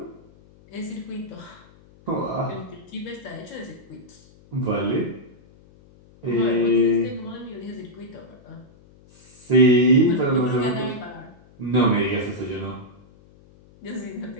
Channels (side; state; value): left; noise; hum, 26 dB below the sound